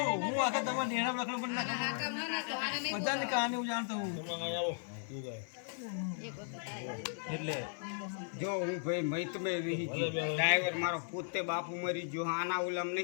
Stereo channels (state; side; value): silent; right; digital silence